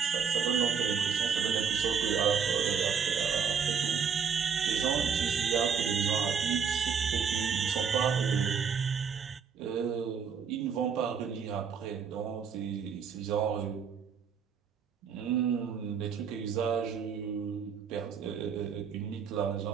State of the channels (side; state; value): left; quieter; 6.6 dB